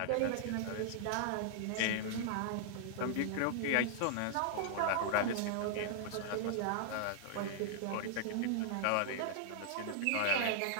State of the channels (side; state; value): both; different; correlation -0.01